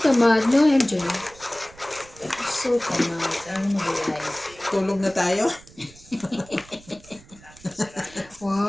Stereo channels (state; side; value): noise; right; rumble, 23 dB below the sound